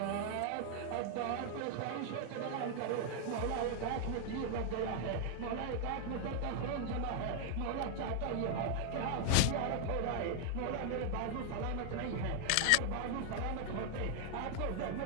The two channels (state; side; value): different; both; correlation 0.00